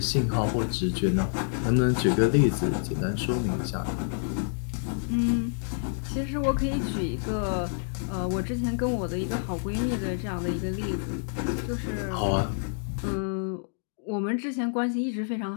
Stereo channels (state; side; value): silent; right; digital silence